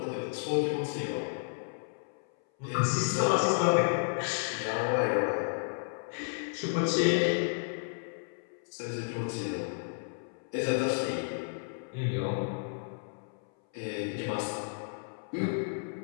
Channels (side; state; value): right; silent; 56 dB below the other